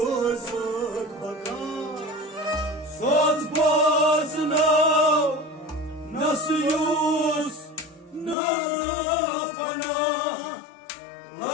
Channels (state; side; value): drops out; right; at 8.3 s